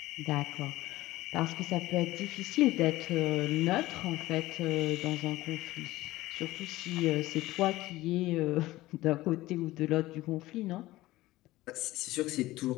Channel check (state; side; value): quieter; right; 17.6 dB